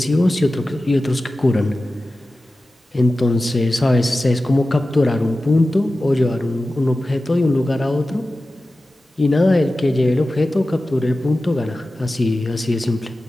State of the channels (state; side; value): normal; both; correlation 0.95